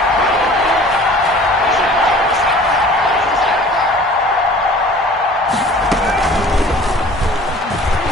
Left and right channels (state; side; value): normal; both; correlation 0.47